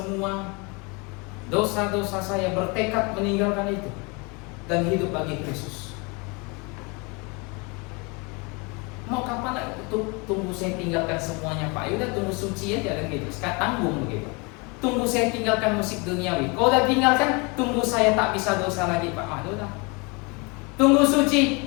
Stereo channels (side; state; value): right; quieter; 29.7 dB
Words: dosa-dosa saya, bertekad meninggalkan itu dan hidup bagi Kristus. Mau kapan tunggu saya tinggalkan semuanya Pak? Yaudah tunggu suci aja kan gitu. Sekarang tanggung begitu. Tunggu saya tinggalkan musik duniawi. Kalau udah tinggalkan, tunggu saya tak bisa dosa lagi Pak. Ah, udah. Tunggu suci